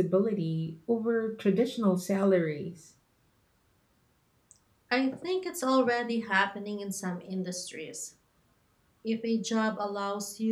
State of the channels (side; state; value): both; identical; correlation 1.00